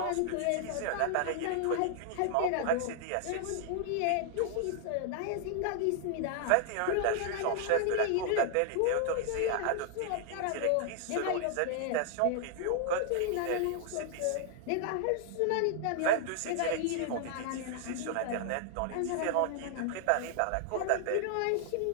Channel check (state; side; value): different; both; correlation 0.00